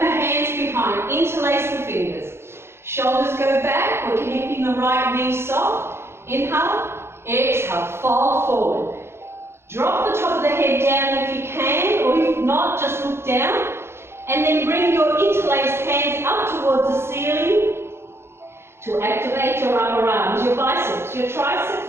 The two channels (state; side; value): late; left; 0.12 ms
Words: hands behind, interlace the fingers. Shoulders go back, we're keeping the right knee soft. Inhale, exhale, fold forward. Drop the top of the head down if you can, or if not, just look down. And then bring your interlaced hands up towards the ceiling to activate your upper arms, your biceps, your